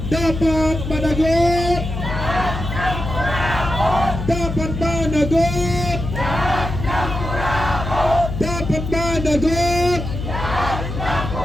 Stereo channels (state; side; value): noise; left; hum, 5 dB below the sound